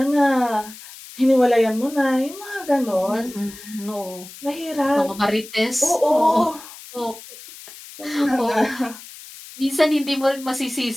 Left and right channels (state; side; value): noise; left; hiss, 17 dB below the sound